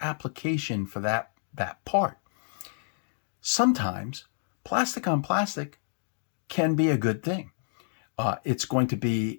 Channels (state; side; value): silent; right; digital silence